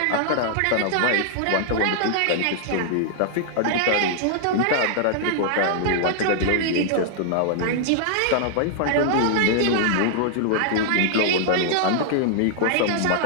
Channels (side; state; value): both; different; correlation -0.01